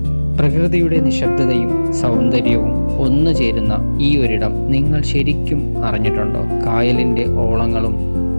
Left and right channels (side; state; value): both; inverted; correlation -1.00